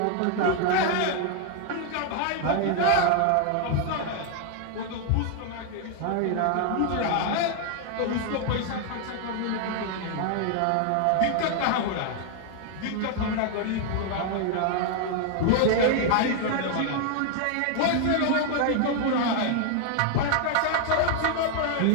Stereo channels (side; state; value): both; different; correlation 0.00